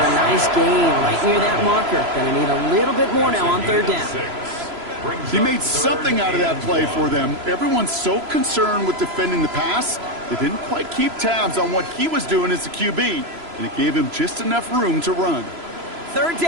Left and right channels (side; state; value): left; late; 3.0 ms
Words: a nice gain right near that marker. Going to need a little bit more now on 3rd down. He made something out of that play for them. Everyone's so concerned with defending the pass, they didn't quite keep tabs on what he was doing as a QB, and it gave him just enough room to run. 3rd